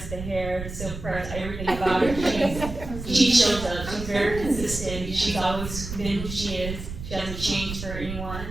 the hair, the silk press, everything about her. She shows up, she's very consistent, she's always been who she is, she hasn't changed for anyone,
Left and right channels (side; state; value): right; noise; rumble, 8 dB below the sound